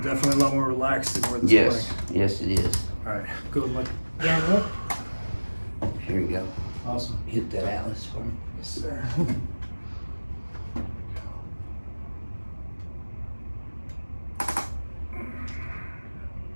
Definitely a lot more relaxed than where this Yes, morning. yes it is. All right. Go and look down and up. Here you go. Awesome. Hit that atlas for me. Yes, sir.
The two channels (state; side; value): inverted; both; correlation -1.00